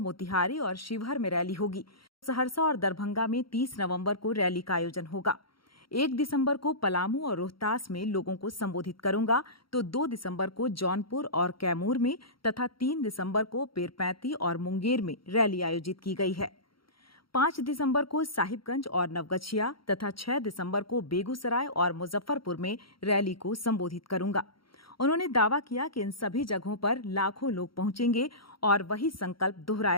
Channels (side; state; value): right; late; 0.74 ms